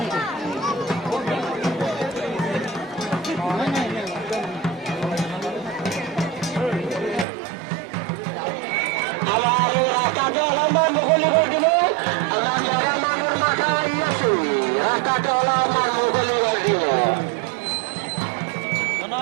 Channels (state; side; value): drops out; left; at 7.2 s